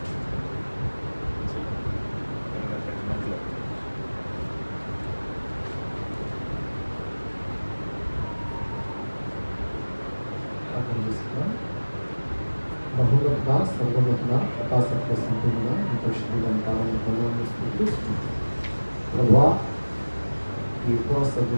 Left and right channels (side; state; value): both; inverted; correlation -1.00